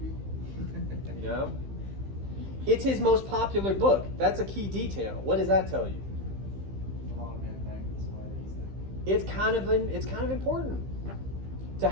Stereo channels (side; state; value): left; late; 15 ms